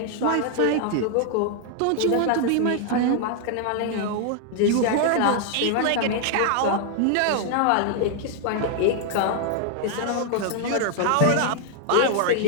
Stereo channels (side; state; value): both; different; correlation 0.00